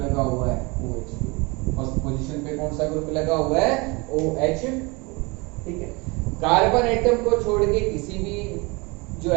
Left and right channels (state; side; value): quieter; left; 26.8 dB